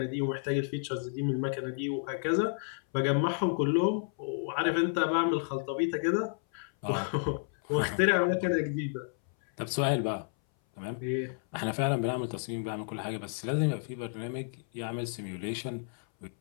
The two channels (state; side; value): silent; right; 57 dB below the other